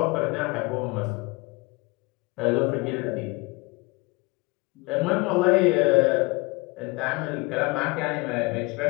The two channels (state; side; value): quieter; right; 25.2 dB